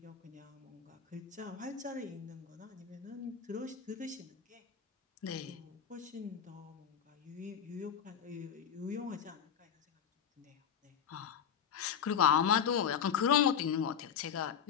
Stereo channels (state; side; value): quieter; right; 8.0 dB